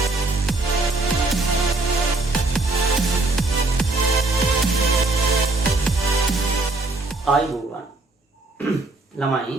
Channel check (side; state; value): left; quieter; 3.2 dB